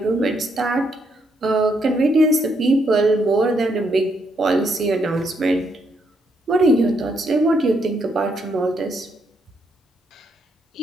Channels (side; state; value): both; normal; correlation 0.76